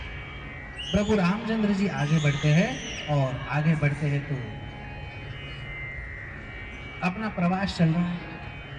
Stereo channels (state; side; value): identical; both; correlation 1.00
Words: प्रभु रामचंद्र जी आगे बढ़ते हैं और आगे बढ़ते हैं तो अपना प्रवास चल रहा है